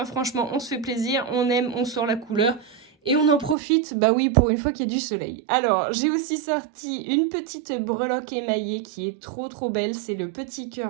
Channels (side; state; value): left; drops out; at 3.6 s